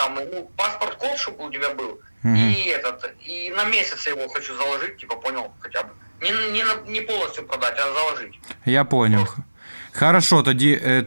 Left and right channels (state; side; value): inverted; both; correlation -1.00